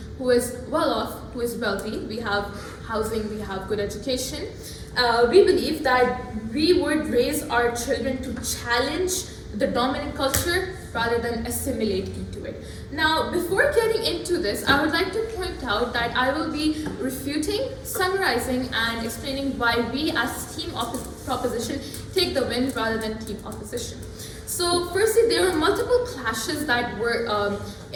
who is well off, who is wealthy, we have housing, we have good education, we believe that we would raise our children to challenge the dominant culture rather than assimilate into it. Now, before getting into this, I would like to point out that I will be refuting, summarizing, and explaining why we as team proposition take the win rather than team opposition. So, firstly, there were multiple clashes that were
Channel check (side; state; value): both; identical; correlation 1.00